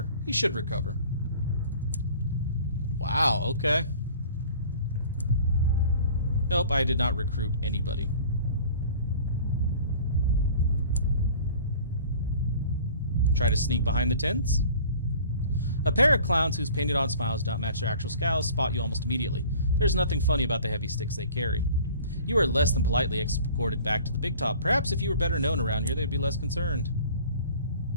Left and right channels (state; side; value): inverted; both; correlation -0.47